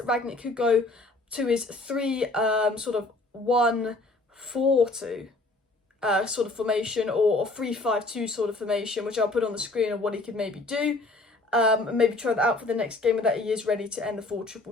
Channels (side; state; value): right; quieter; 3.1 dB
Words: Rangnick could go to his 3-1-4-2 sort of formation, or 3-5-2 sort of formation, which I'll put on the screen of what he could maybe do. And maybe try that out for the next game, and that he is ready to end the